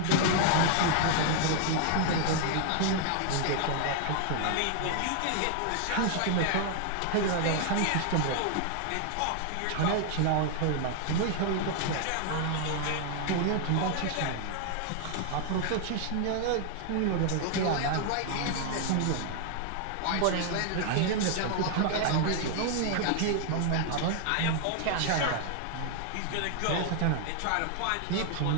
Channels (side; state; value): both; different; correlation 0.00